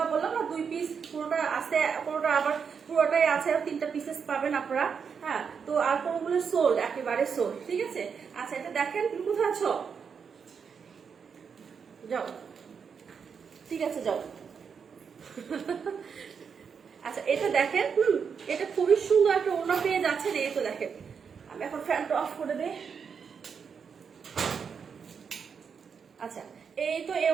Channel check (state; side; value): quieter; left; 6.4 dB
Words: বললাম না 2 পিস, পুরোটা আছে, পুরোটা আবার পুরোটাই আছে, আর 3টা পিসেস পাবেন আপনারা, হ্যাঁ। তো আর কোনগুলো সোল্ড, একেবারে সোল্ড, ঠিক আছে। আচ্ছা এটা দেখেন, তুমি কোথায় আছো, যাও, ঠিক আছে যাও। আচ্ছা এটা দেখেন, এটা খুবই সুন্দর একটা ওড়না পেয়ে যাচ্ছে। এই তো দেখেন, আমি এখন ফ্যানটা অফ করে দেই। আচ্ছা এই তো এই